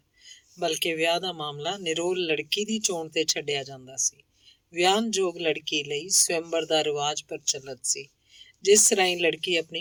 ਬਲਕਿ ਵਿਆਹ ਦਾ ਮਾਮਲਾ ਨਿਰੋਲ ਲੜਕੀ ਦੀ ਚੋਣ ਤੇ ਛੱਡਿਆ ਜਾਂਦਾ ਸੀ। ਵਿਆਹਨਯੋਗ ਲੜਕੀ ਲਈ ਸਵੰਬਰ ਦਾ ਰਿਵਾਜ ਪ੍ਰਚਲਿਤ ਸੀ, ਜਿਸ ਰਾਹੀਂ ਲੜਕੀ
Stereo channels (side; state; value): both; identical; correlation 1.00